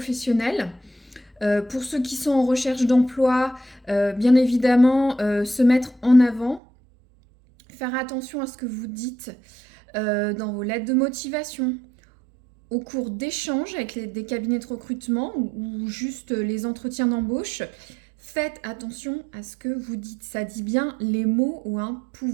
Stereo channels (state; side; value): drops out; left; at 6.6 s